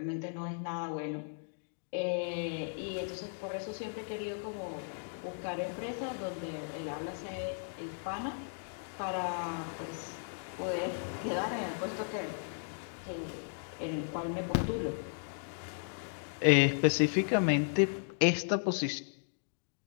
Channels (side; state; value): right; silent; digital silence